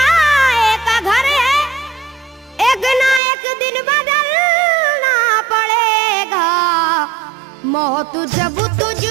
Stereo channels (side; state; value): left; drops out; at 3.2 s